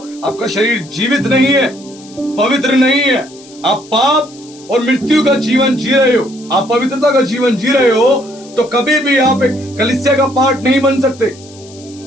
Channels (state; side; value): noise; left; hiss, 22 dB below the sound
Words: आपका शरीर जीवित नहीं है, पवित्र नहीं है, आप पाप और मृत्यु का जीवन जी रहे हो, आप पवित्रता का जीवन जी रहे हो, तो कभी भी आप एक कलीसिया का पार्ट नहीं बन सकते।